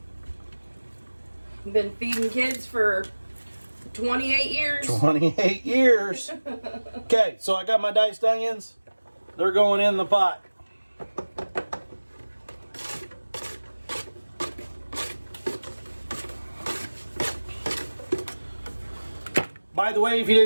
Been feeding kids for 28 years. 28 years. Okay, so I got my diced onions. They're going in the pot. By the way, if you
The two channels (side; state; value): both; inverted; correlation -1.00